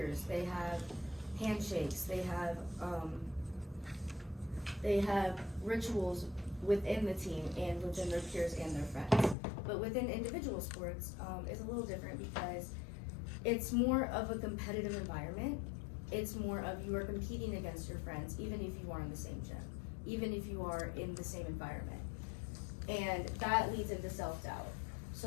they have handshakes, they have rituals within the team and within their peers and their friends. But within individual sports, it's a little different, because it's more of a competitive environment. It's more of you are competing against your friends, even if you are in the same gym, even if you are in the same environment. And that leads into self-doubt.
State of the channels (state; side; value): drops out; right; at 9.3 s